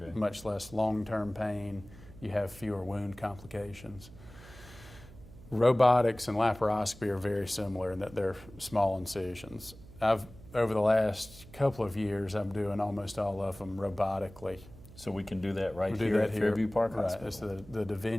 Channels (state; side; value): noise; right; hum, 19 dB below the sound